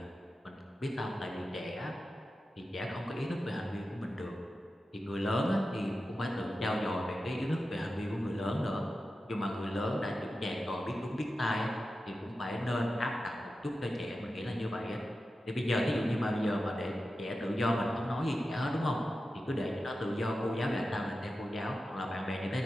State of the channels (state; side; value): normal; both; correlation 0.92